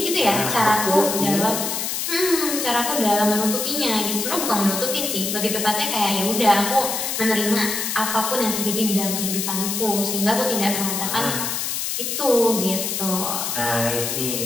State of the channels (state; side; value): noise; left; hiss, 2 dB below the sound